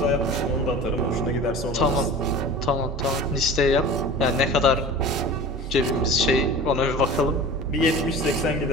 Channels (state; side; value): normal; both; correlation 0.36